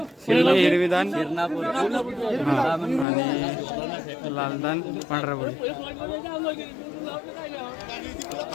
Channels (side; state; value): right; drops out; at 3.1 s